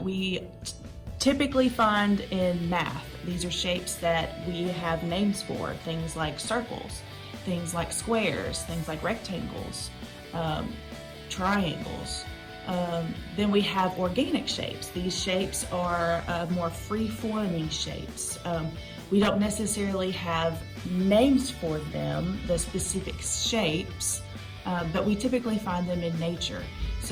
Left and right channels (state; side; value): identical; both; correlation 1.00